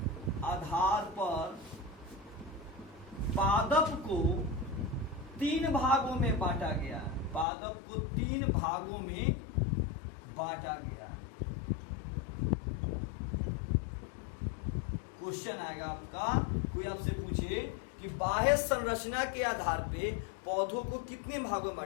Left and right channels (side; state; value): right; drops out; at 7.5 s